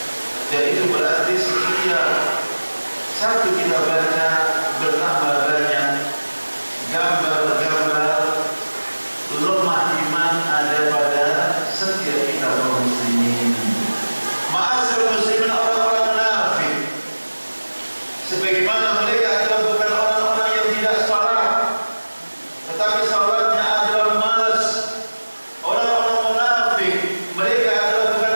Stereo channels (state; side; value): inverted; both; correlation -1.00